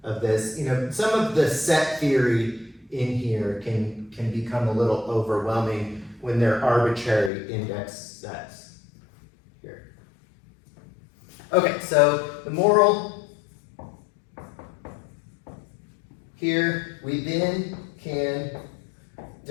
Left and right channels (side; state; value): right; drops out; at 7.3 s